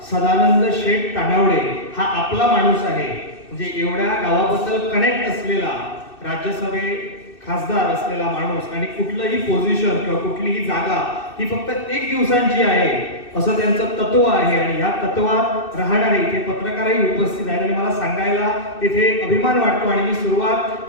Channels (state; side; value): late; right; 2.6 ms